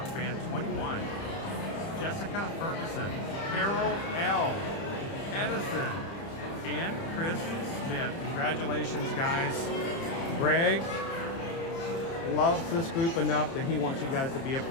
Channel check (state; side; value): late; right; 30 ms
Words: fan 21, Jessica Ferguson, Carol L, Edison, and Chris Smith. Congratulations, guys. Greg loves this group enough that he wants you guys to be a